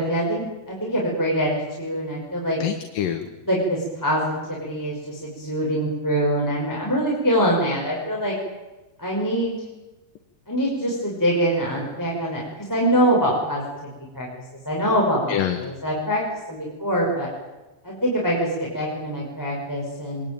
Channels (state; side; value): normal; both; correlation -0.19